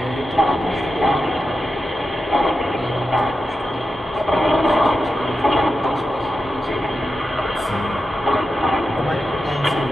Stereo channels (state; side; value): normal; both; correlation 0.90